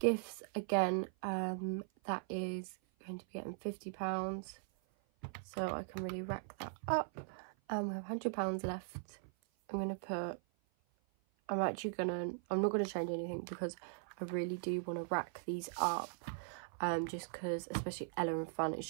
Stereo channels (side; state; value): left; silent; 51 dB below the other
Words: again, that is going to be getting £50. So I can really rack that up. And we have £100 left. I'm not going to change anything because I really do want to rack these up, just because, especially Ella and Fun, it's